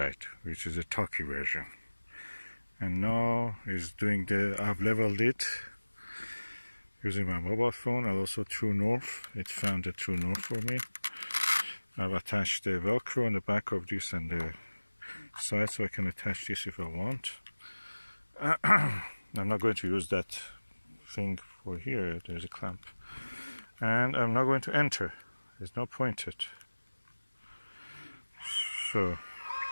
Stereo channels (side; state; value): both; inverted; correlation -1.00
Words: which is a talkie version. And now is doing I've leveled it using my mobile phone and also True North. It found a True North for me. I've attached the Velcro on the back of this and the side, so I can attach this if I want. I'm not going to use that thing for here. There's a clamp, and I'm not going to enter. There's no point it. So